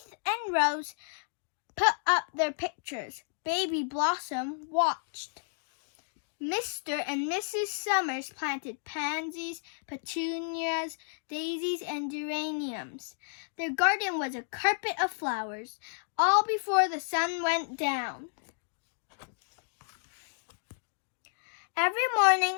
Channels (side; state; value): right; silent; digital silence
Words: and Rose put up their pictures. Baby Blossom watched. Mr. and Mrs. Summers planted pansies, petunias, daisies, and geraniums. Their garden was a carpet of flowers, all before the sun went down. Every